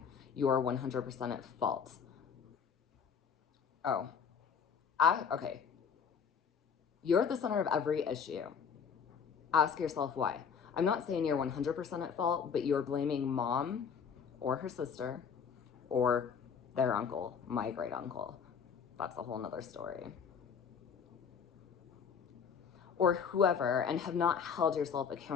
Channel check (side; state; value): right; quieter; 6.7 dB